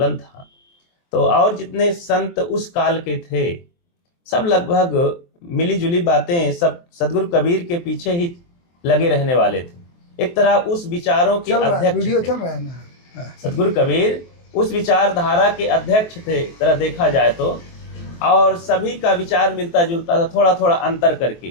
था, तो और जितने संत उस काल के थे, सब लगभग मिली जुली बातें, सब सदगुरु कबीर के पीछे ही लगे रहने वाले थे। एक तरह उस विचारों के अध्यक्ष थे। चल रहा है ना। सदगुरु कबीर उस विचारधारा के अध्यक्ष थे, तरह देखा जाए तो। और सभी का विचार मिलता जुलता था, थोड़ा थोड़ा अंतर करके,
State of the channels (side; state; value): right; late; 23 ms